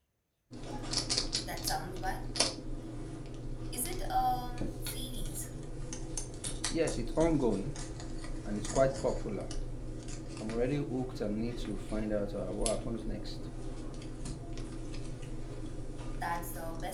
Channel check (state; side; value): identical; both; correlation 1.00